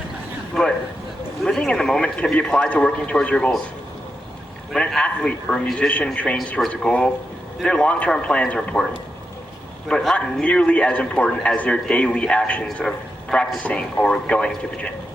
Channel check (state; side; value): normal; both; correlation 0.86